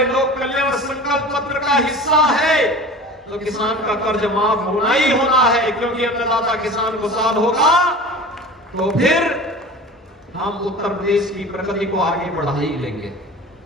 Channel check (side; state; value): both; normal; correlation 0.38